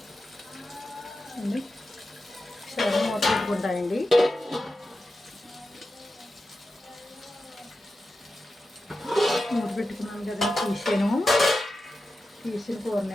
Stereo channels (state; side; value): normal; both; correlation 0.91